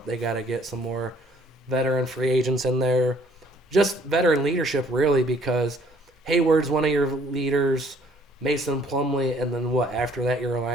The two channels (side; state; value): both; normal; correlation 0.61